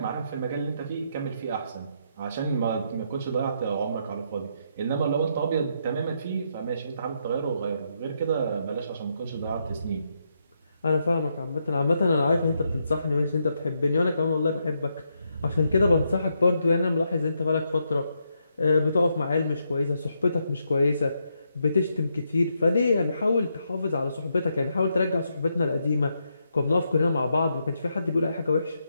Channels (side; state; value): both; inverted; correlation -0.79